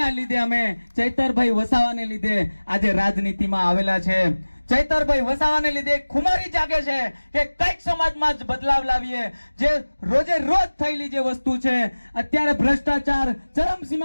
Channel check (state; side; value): inverted; both; correlation -1.00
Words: લીધે અમે ચૈતરભાઈ વસાવાને લીધે આજે રાજનીતિમાં આવેલા છે. ચૈતરભાઈ વસાવાને લીધે ખુમારી જાગે છે કે કંઈક સમાજમાં જ બદલાવ લાવીએ. જે રોજે રોજ થયેલી જે વસ્તુ છે, અત્યારે ભ્રષ્ટાચાર